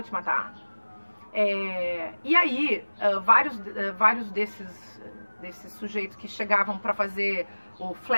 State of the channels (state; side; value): inverted; both; correlation -1.00